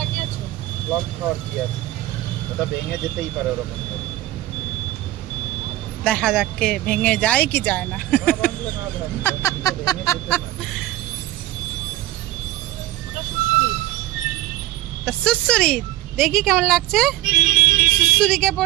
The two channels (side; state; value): left; quieter; 15.5 dB